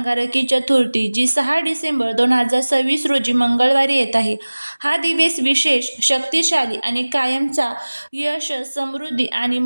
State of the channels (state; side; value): inverted; both; correlation -1.00